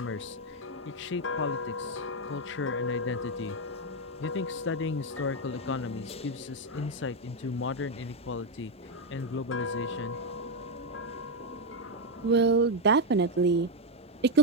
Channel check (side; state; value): both; normal; correlation 0.05